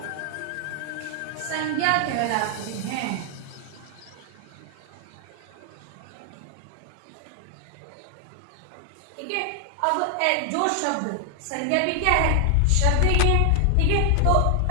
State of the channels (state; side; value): different; both; correlation 0.00